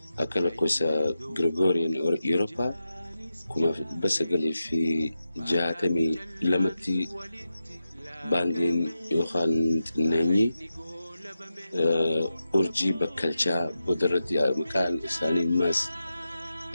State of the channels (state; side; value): inverted; both; correlation -0.92